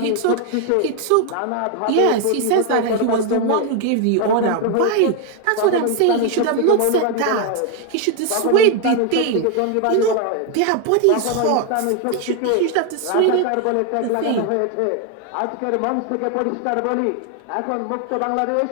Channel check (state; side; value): different; both; correlation 0.01